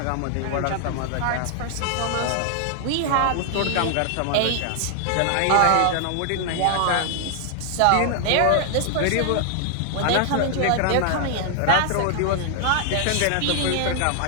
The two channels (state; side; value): different; both; correlation 0.00